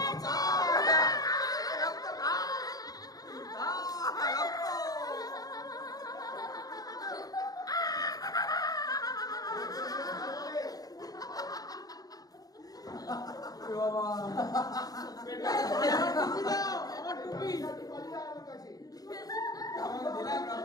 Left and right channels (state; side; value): late; right; 0.18 ms